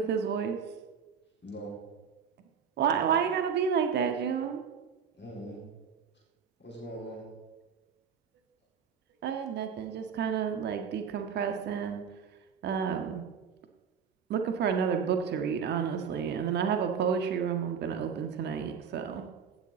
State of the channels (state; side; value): quieter; left; 6.9 dB